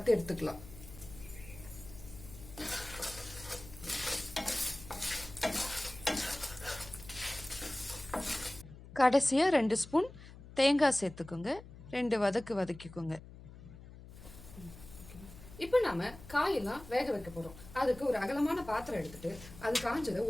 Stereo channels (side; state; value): left; noise; hum, 17 dB below the sound